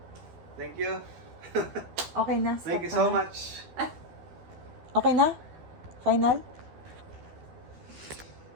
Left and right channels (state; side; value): late; left; 12 ms